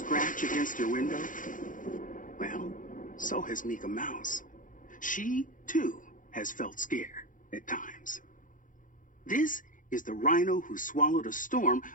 against your window? Well, so has Mika Mouse. She, too, has felt scared at times. This is The Rhino Who Swallowed a Storm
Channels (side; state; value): right; late; 0.38 ms